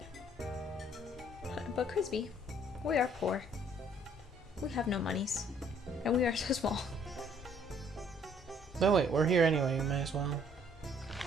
But Crispy, we are poor. We have no monies. And we are so small. No, wait, we're here anyway, you might as well.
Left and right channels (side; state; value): both; normal; correlation 0.61